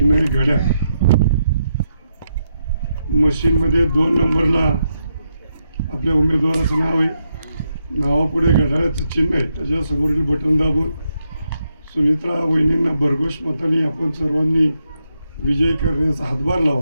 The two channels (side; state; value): both; inverted; correlation -0.82